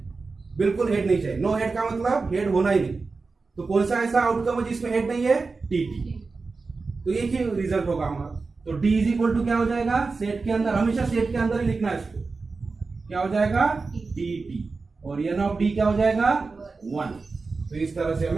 बिल्कुल हेड नहीं चाहिए। नो हेड का मतलब हेड होना ही नहीं। तो कौन सा ऐसा आउटकम है जिसमें हेड नहीं है? टीटी। तो एक ही रिजल्ट होगा हमारा। तो डी इज इक्वल टू क्या हो जाएगा? सेट के अंदर, हमेशा सेट के अंदर ही लिखना है इसको। क्या हो जाएगा? टीटी। और एन ऑफ डी क्या हो जाएगा? 1। तो इस तरह से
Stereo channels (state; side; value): quieter; left; 4.2 dB